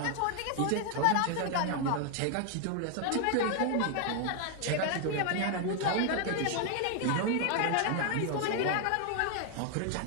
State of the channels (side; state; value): both; different; correlation 0.00